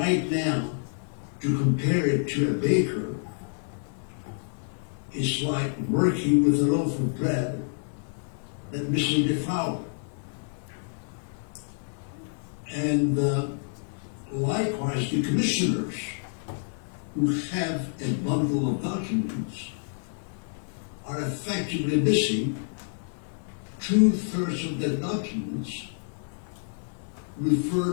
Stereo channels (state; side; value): silent; right; 59 dB below the other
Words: now, to compare it to a baker, it's like working with a loaf of bread that's missing the flour. And likewise, the commissioners who have a bundle of documents are effectively missing 2/3 of the documents